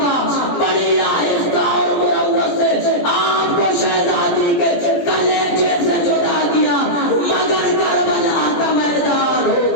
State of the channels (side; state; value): right; late; 17 ms